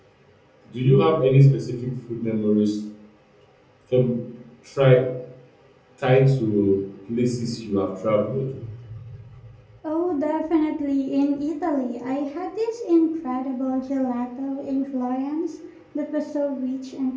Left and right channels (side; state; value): both; identical; correlation 1.00